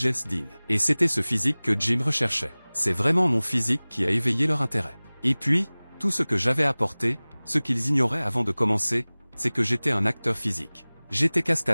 Dean. Et c'était ce physique que Jim recherchait. C'est vraiment mon physique qui a éveillé leur intérêt. Et puis, tout ce que j'avais apporté, ce qu'ils ignoraient avant de commencer, c'est que j'étais un acteur physique. J'étais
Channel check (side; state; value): both; inverted; correlation -1.00